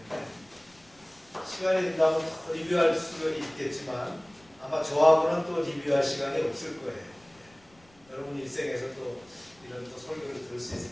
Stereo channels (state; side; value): noise; left; rumble, 30 dB below the sound